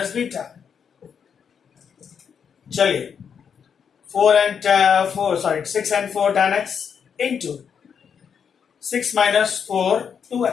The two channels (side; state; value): right; quieter; 7.2 dB